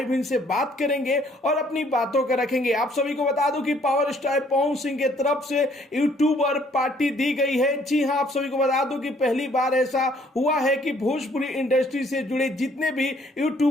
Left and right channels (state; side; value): normal; both; correlation 0.63